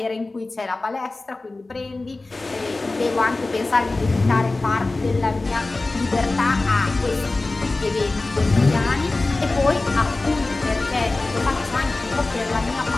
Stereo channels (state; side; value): quieter; right; 3.2 dB